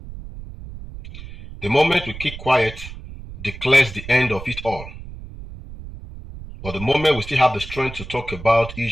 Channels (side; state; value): right; noise; rumble, 13 dB below the sound